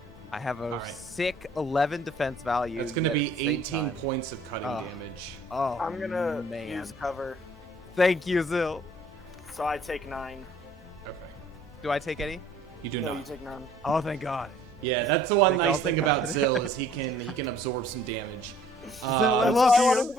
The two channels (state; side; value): normal; both; correlation 0.56